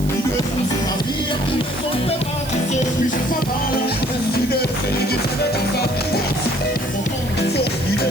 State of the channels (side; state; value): right; noise; hiss, 14 dB below the sound